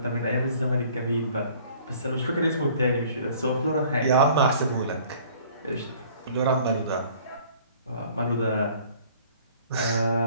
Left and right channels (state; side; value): inverted; both; correlation -0.53